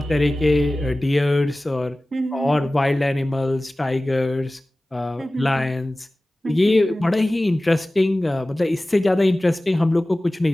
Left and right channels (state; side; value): normal; both; correlation 0.97